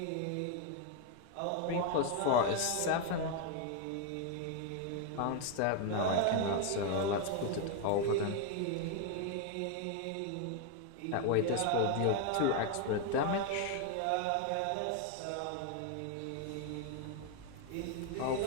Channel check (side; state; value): both; different; correlation 0.01